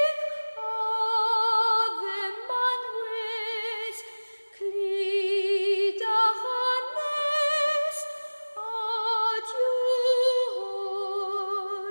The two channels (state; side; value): inverted; both; correlation -1.00